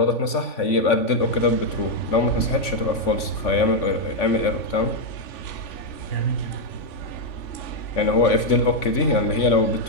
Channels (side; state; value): right; late; 3.5 ms